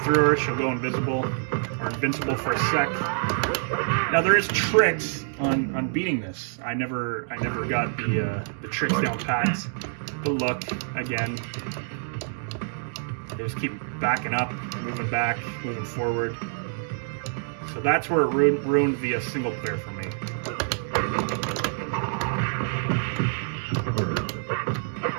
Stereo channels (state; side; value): silent; left; digital silence